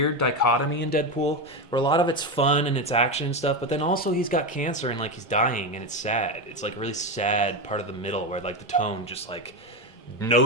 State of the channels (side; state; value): both; normal; correlation 0.14